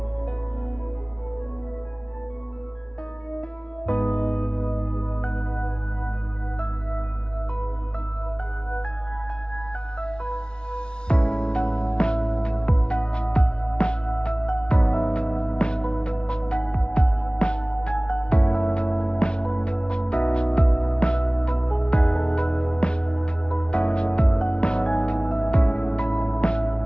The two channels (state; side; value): late; right; 0.055 ms